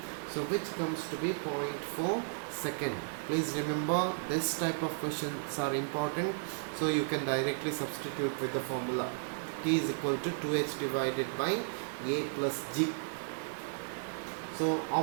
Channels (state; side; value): silent; left; digital silence